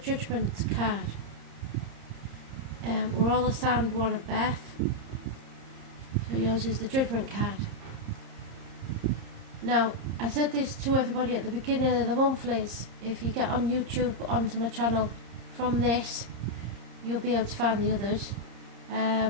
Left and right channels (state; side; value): late; left; 30 ms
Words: card. We're all assigned one at birth, so yours is the Judgment card. Now, I said this to everybody at the beginning of the monthlies. If you get on YouTube onto my channel from this, you'll be able to find the others.